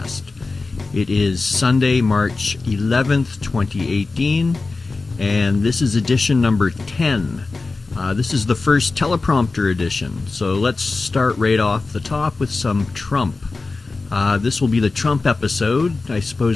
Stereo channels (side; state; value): right; quieter; 3.7 dB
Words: It is Sunday, March 11th, 2018, and this is edition number 10. This is the first teleprompter edition, so let's start right off the top with some Trump. This will be the Trump episode. I